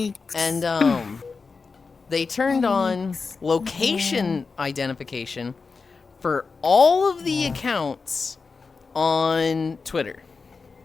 And they turned on location identification for all of the accounts on Twitter.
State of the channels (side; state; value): right; quieter; 4.6 dB